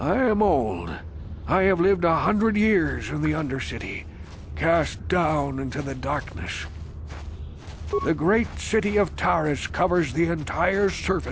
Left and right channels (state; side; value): identical; both; correlation 1.00